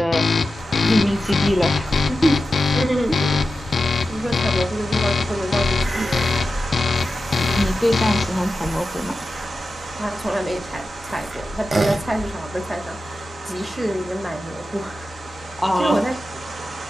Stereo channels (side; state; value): both; normal; correlation 0.92